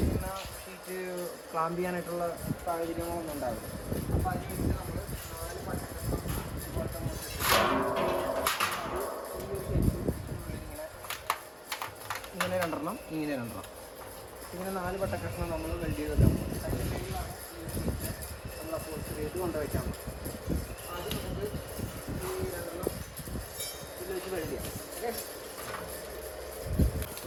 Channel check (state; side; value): identical; both; correlation 1.00